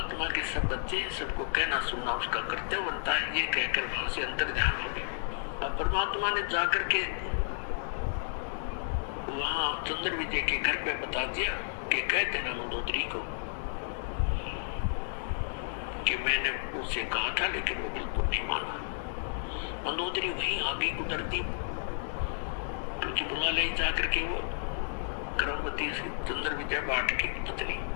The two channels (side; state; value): right; silent; digital silence